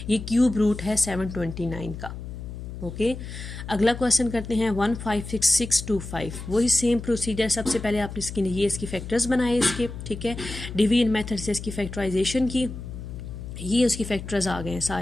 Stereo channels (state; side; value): noise; left; hum, 9 dB below the sound